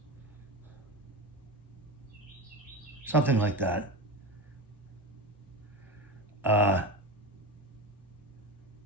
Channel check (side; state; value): both; normal; correlation 0.23